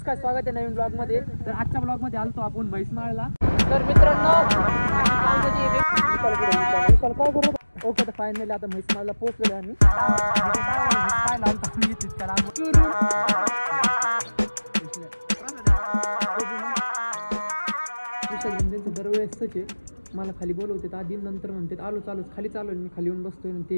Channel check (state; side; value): inverted; both; correlation -1.00